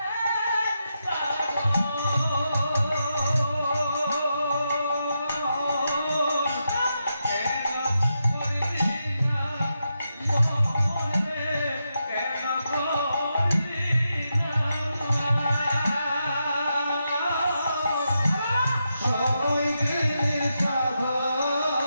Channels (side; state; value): both; inverted; correlation -0.85